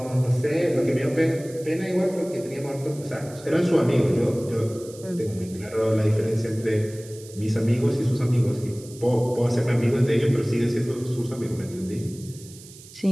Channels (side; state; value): right; noise; hiss, 19 dB below the sound